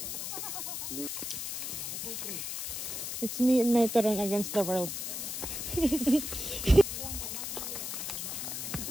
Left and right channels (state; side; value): noise; left; hiss, 4 dB below the sound